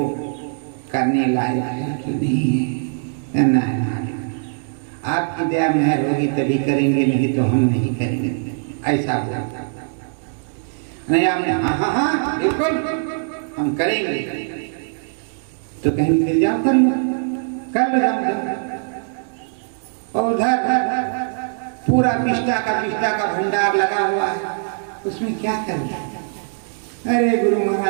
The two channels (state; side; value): silent; left; digital silence